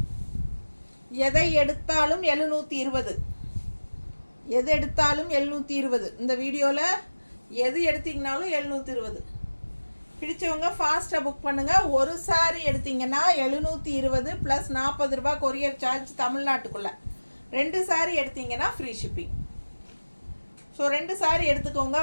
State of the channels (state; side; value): inverted; both; correlation -1.00